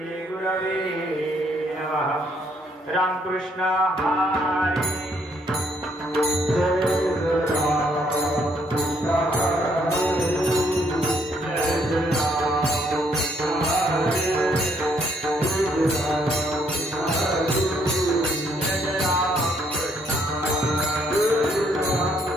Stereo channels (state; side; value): normal; both; correlation 0.69